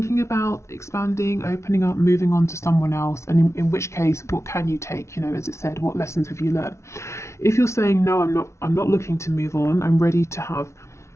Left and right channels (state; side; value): late; right; 0.13 ms